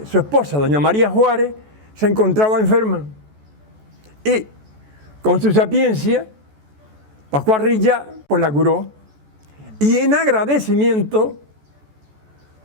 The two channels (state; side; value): late; left; 14 ms